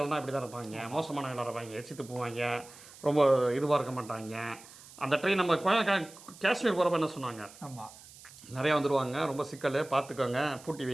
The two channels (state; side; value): noise; right; hiss, 20 dB below the sound